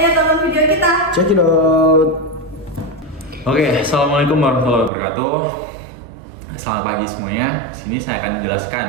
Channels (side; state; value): left; drops out; at 4.9 s